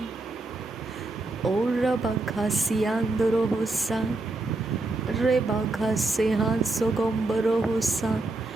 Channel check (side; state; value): left; quieter; 3.2 dB